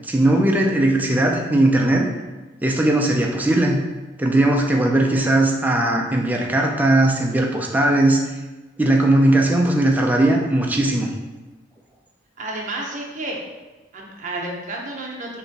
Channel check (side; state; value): both; normal; correlation 0.78